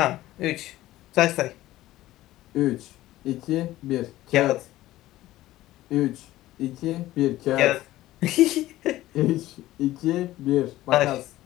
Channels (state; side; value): quieter; right; 15.8 dB